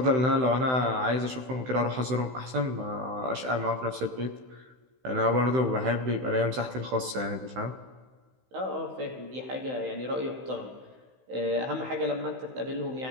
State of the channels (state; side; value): late; left; 16 ms